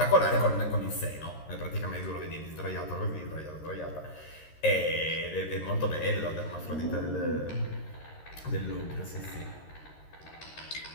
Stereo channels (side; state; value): right; late; 13 ms